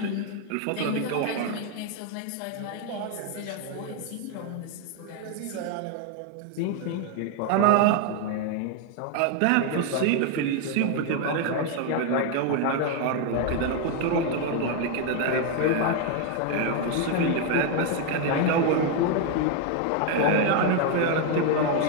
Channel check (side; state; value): both; different; correlation 0.01